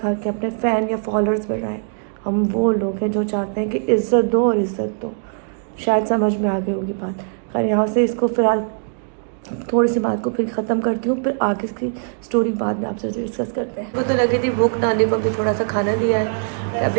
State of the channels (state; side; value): silent; left; 65 dB below the other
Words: अपने फ़ैन या फॉलोअर्स बढ़ाएं। हम वो लोग हैं जो चाहते हैं कि इज़्ज़त दो और इज़्ज़त दो। शायद समझ में आ गई होगी बात। खैर यहाँ से इसको फ़िलहाल थोड़ी सी बात को फिर ख़त्म करती हूँ, फिर आगे की स्टोरी बाद में आपसे डिस्कस करते हैं। मुझे तो लगी थी भूख, नानी को भी थोड़ा सा खाना दिया है,